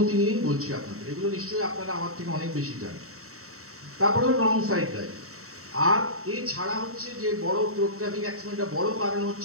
নিয়েই বলছি আপনাদের, এগুলো নিশ্চয়ই আপনারা আমার থেকে অনেক বেশি জানেন। তারপরে রং সাইড ড্রাইভ। আর এছাড়া হচ্ছে যে বড় রোড ট্রাফিক অ্যাক্সিডেন্টের বড় কারণ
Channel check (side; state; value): left; late; 0.64 ms